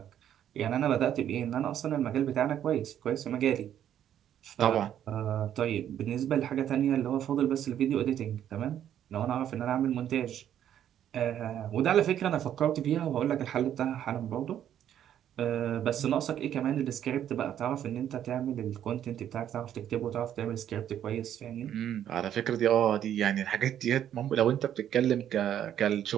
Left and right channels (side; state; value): left; quieter; 10.4 dB